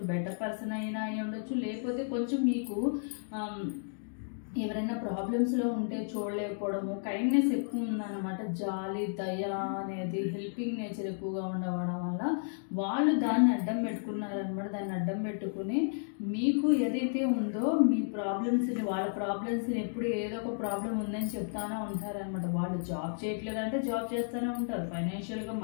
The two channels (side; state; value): right; silent; digital silence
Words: బెటర్ పర్సన్ అయినా అయి ఉండొచ్చు, లేకపోతే కొంచెం మీకు ఎవరైనా ప్రాబ్లమ్స్లో ఉంటే చూడలేకపోవడము, కైండ్నెస్ ఎక్కువ ఉందన్నమాట, జాలి దయ అనేది హెల్పింగ్ నేచర్ ఎక్కువగా ఉండవడం వల్ల వాళ్ళు దాన్ని అడ్డం పెట్టుకున్నారనమాట. దాన్ని అడ్డం పెట్టుకుని మీకు ఏదైతే ఉందో మీ ప్రాబ్లమ్స్ని, వాళ్ళ ప్రాబ్లమ్స్ని ఎప్పుడు ఏదో ఒక ప్రాబ్లం ఉందని చెప్తానే ఉంటారనమాట. వాళ్ళు జాబ్ చేయట్లేదంటే జాబ్ చేస్తూనే ఉంటారు, ఫైనాన్షియల్గా